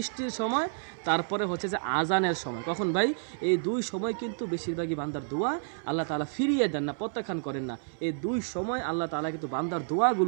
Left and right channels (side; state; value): left; silent; 58 dB below the other